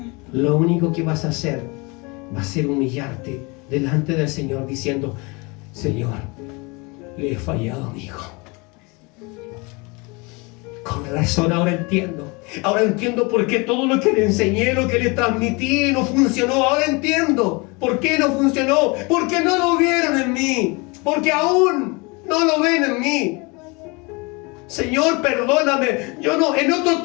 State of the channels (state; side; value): quieter; right; 27.8 dB